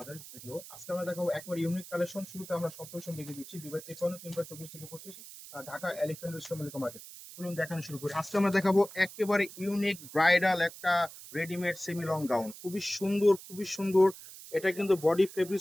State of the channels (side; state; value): right; noise; hiss, 15 dB below the sound